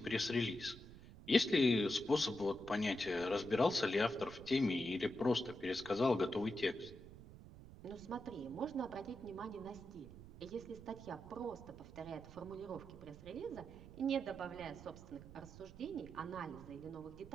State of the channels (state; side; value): noise; right; rumble, 16 dB below the sound